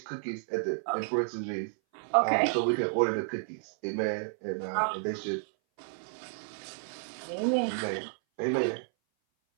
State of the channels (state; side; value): silent; left; 57 dB below the other